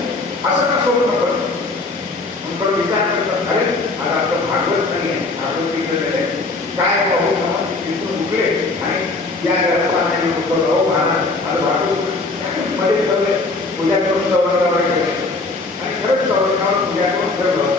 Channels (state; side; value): quieter; right; 3.5 dB